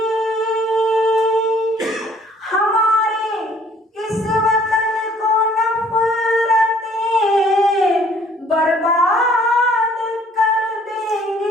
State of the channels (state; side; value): normal; both; correlation 0.59